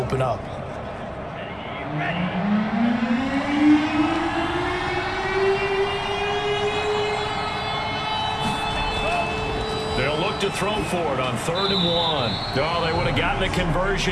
up. They'll look to throw for it on 3rd and 1. Oh, they would have gotten a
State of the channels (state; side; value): identical; both; correlation 1.00